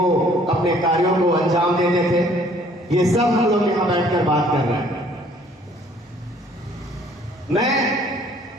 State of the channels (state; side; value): normal; both; correlation 0.58